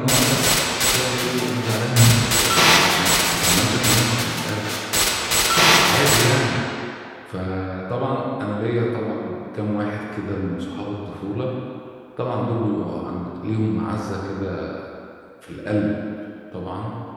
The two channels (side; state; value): both; identical; correlation 1.00